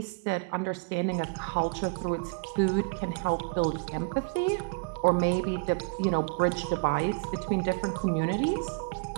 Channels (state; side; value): quieter; left; 32.9 dB